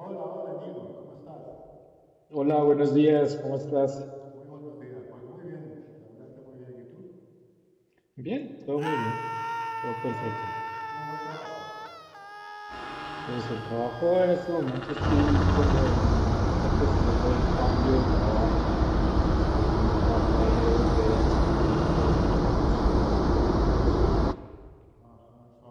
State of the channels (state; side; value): identical; both; correlation 1.00